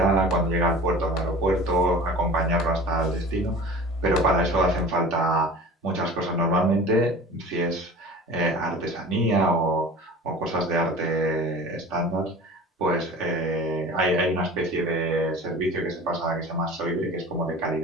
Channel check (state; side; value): normal; both; correlation 0.40